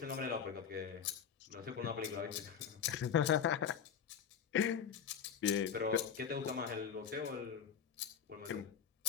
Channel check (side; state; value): right; quieter; 7.6 dB